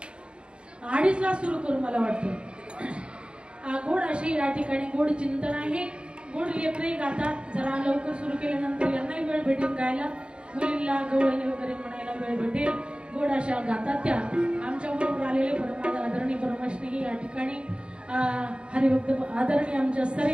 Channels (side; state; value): left; late; 0.054 ms